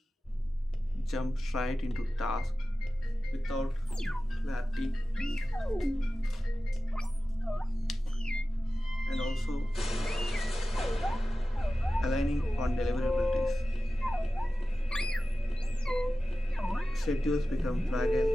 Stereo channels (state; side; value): normal; both; correlation 0.95